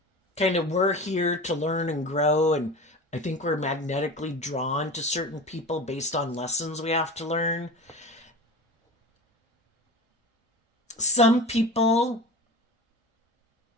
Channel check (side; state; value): both; normal; correlation 0.32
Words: kind of, we're here to learn and grow, and I think we're magnetically drawn to certain people based on lessons we have to learn. Some people